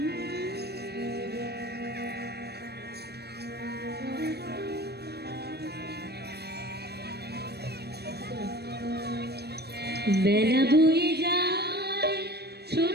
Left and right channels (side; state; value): left; late; 0.47 ms